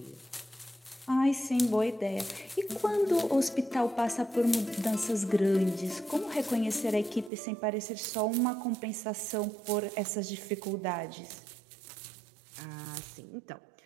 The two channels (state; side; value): drops out; left; at 7.3 s